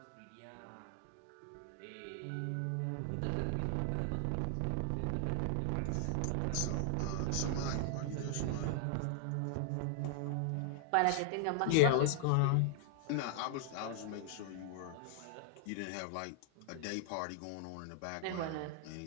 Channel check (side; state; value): both; different; correlation 0.00